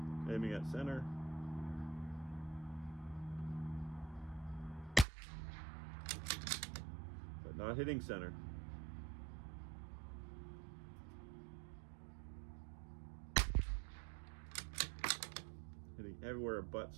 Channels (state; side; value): drops out; left; at 5.1 s